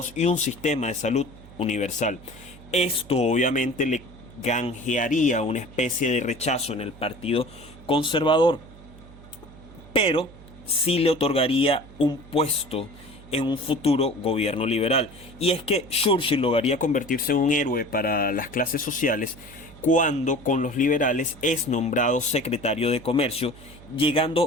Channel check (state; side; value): noise; right; hum, 20 dB below the sound